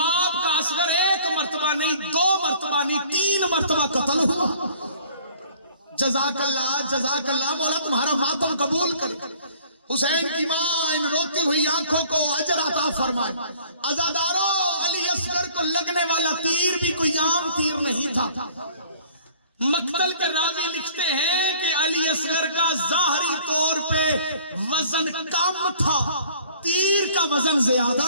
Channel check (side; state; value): both; inverted; correlation -0.54